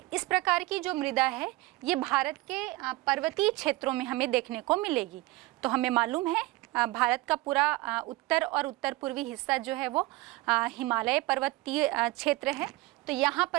इस प्रकार की जो मृदा है ये भारत के पर्वतीय क्षेत्रों में हमें देखने को मिलेगी। तो हमें मालूम है भारत का पूरा उत्तर और उत्तर पूर्वी हिस्सा जो है वो हिमालय पर्वतीय क्षेत्र है। तो यहाँ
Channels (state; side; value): quieter; left; 20.2 dB